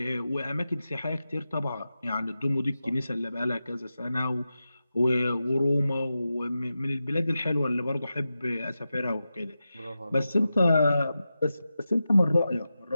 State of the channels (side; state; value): both; inverted; correlation -0.92